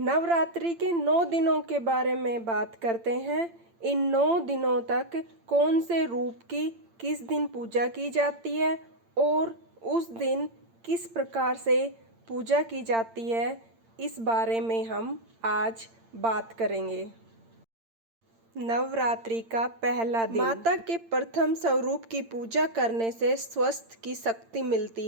के 9 दिनों के बारे में बात करते हैं। इन 9 दिनों तक कौन से रूप की किस दिन पूजा की जाती है और उस दिन किस प्रकार से पूजा की जाती है, इस बारे में हम आज बात करेंगे। नवरात्रि का पहला दिन। माता के प्रथम स्वरूप की पूजा करने से स्वास्थ्य की शक्ति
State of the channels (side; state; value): left; late; 8.8 ms